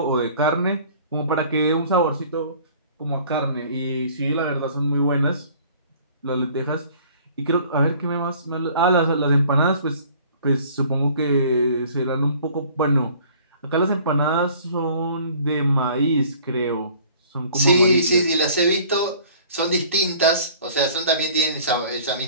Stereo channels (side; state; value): both; inverted; correlation -0.52